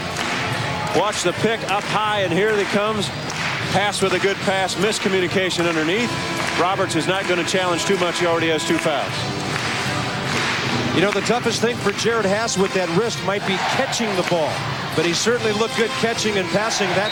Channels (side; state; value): both; identical; correlation 1.00